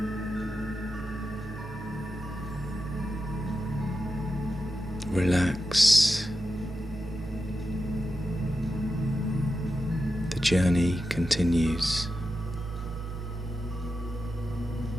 Relax. The journey continues.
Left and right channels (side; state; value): both; normal; correlation 0.90